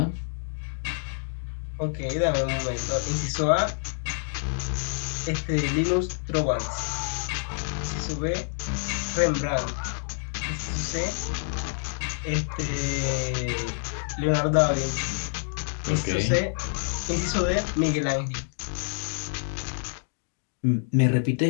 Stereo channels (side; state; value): right; silent; digital silence